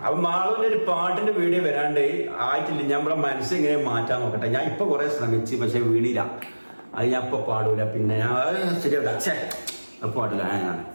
അപ്പൊ മാളുവിന്റെ ഒരു പാട്ടിന്റെ വീഡിയോ വരാണ്ട് ആയിട്ടില്ല. നമ്മളെ മനസ്സ് ഇങ്ങനെ മാറ്റാൻ നോക്കട്ടെ. ഞാൻ ഇപ്പൊ കുറെ ശ്രമിച്ചു, പക്ഷെ വീണില്ല. അത് ഞാൻ ഇപ്പൊ പാടൂല. പിന്നെ ഞാൻ ശരിയാവില്ല പാടില്ല.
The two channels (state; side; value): inverted; both; correlation -1.00